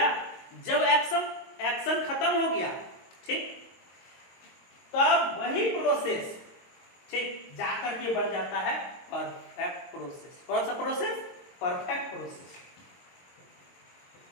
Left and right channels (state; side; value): late; right; 22 ms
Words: जब एक्शन खत्म हो गया, ठीक, तब वही प्रोसेस, ठीक, जाकर के बन जाता है परफेक्ट प्रोसेस। कौन सा process? Perfect process,